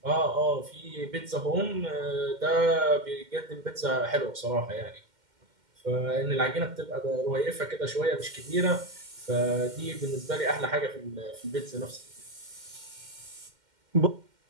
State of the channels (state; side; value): late; left; 2.1 ms